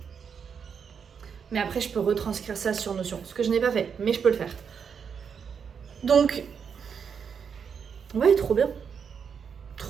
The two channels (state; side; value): quieter; left; 6.7 dB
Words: Mais après, je peux retranscrire ça sur Notion, ce que je n'ai pas fait, mais je peux le faire. Donc, ouais, trop bien.